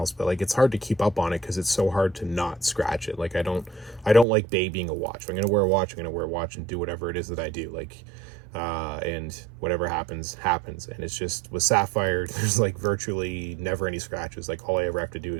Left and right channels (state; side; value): drops out; left; at 4.2 s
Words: but like, it's hard to keep up on it because it's so hard to not scratch it. Like, I don't like babying a watch. If I'm gonna wear a watch, I'm gonna wear a watch and do whatever it is that I do. Like, and whatever happens. And it's just, with sapphire, there's like virtually never any scratches. Like, all I ever have to do